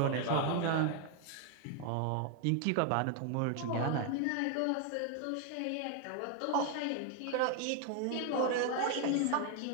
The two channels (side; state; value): both; different; correlation 0.00